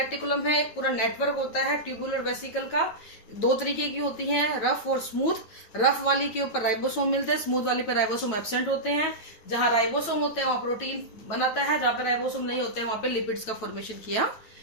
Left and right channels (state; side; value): late; right; 9.4 ms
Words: है एक पूरा नेटवर्क होता है ट्यूबुलर वेसिकल का। दो तरीके की होती हैं, रफ और स्मूथ। रफ वाली के ऊपर राइबोसोम मिलते हैं, स्मूथ वाली पे राइबोसोम एब्सेंट होते हैं। जहां राइबोसोम होते हैं वहां प्रोटीन बनाता है, जहां पे राइबोसोम नहीं होते हैं वहां पे लिपिड्स का फॉर्मेशन किया